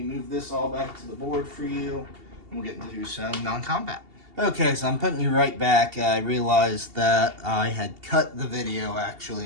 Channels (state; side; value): late; left; 2.8 ms